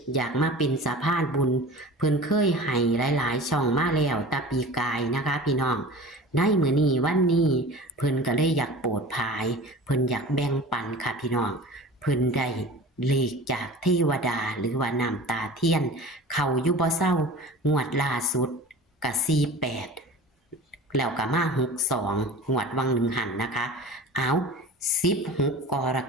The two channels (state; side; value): normal; both; correlation 0.38